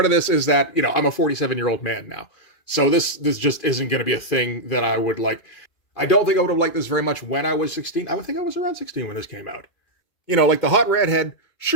of this is that, I'm a 47-year-old man now. So this just isn't going to be a thing that I would like. I don't think I would have liked this very much when I was 16. I would think I was around 16 when this came out. The hot redhead,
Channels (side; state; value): right; late; 2.4 ms